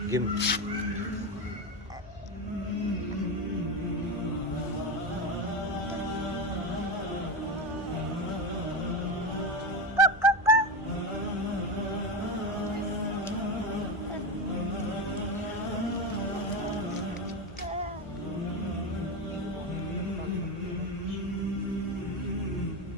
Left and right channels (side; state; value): right; noise; hum, 20 dB below the sound